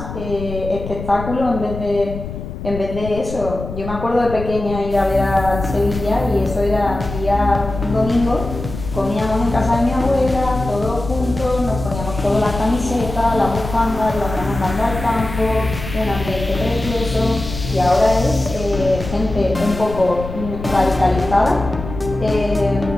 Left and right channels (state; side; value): noise; left; rumble, 9 dB below the sound